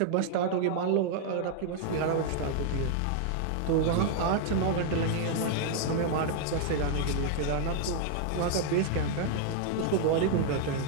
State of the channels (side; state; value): both; different; correlation 0.00